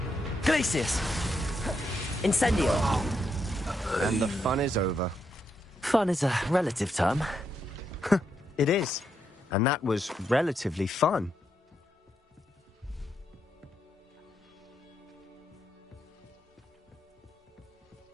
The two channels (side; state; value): both; normal; correlation 0.80